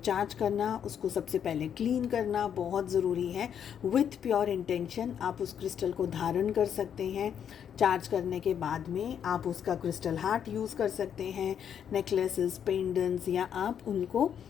करना, उसको सबसे पहले क्लीन करना बहुत ज़रूरी है। विथ प्योर इंटेंशन आप उस क्रिस्टल को धारण कर सकते हैं। चार्ज करने के बाद में आप उसका क्रिस्टल हार्ट यूज़ कर सकते हैं, नेकलेसेस, पेंडेंट्स, या आप उनको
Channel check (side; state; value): right; quieter; 8.5 dB